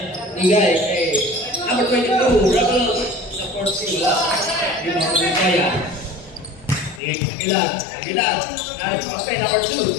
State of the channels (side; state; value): right; drops out; at 7.0 s